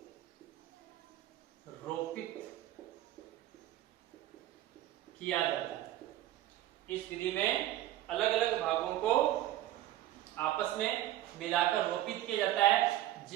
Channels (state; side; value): quieter; left; 13.9 dB